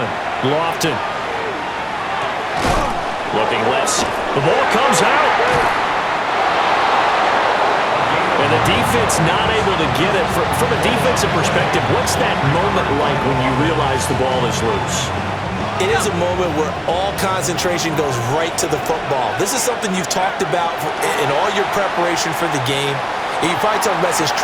Lofton. Looking left. The ball comes out. And the defense not able to get it. From a defensive perspective, what's that moment like when you realize the ball is loose? It is a moment where all concentration goes right to the football. This is something you've talked about in all your preparation for the game. You probably talked about since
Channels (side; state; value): both; identical; correlation 1.00